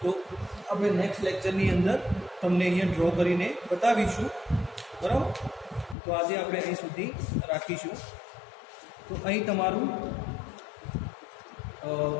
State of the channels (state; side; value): drops out; right; at 6.0 s